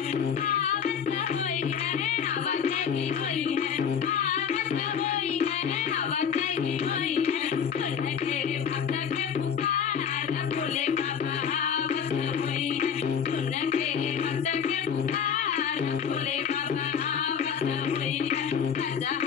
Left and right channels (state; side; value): quieter; right; 7.5 dB